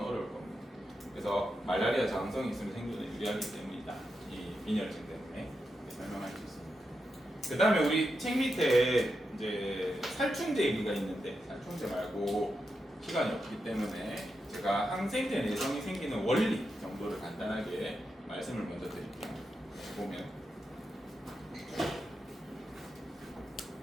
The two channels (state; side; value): normal; both; correlation 0.87